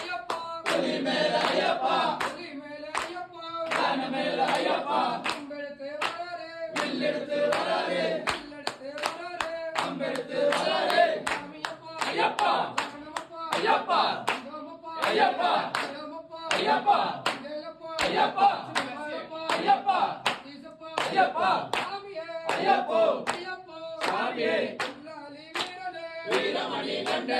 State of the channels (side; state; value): both; identical; correlation 1.00